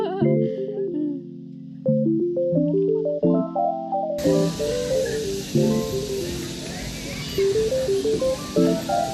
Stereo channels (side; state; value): both; identical; correlation 1.00